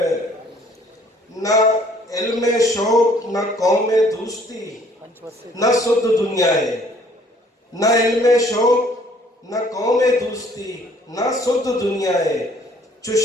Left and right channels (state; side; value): normal; both; correlation 0.60